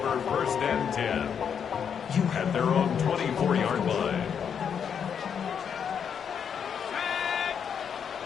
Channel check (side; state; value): right; quieter; 7.5 dB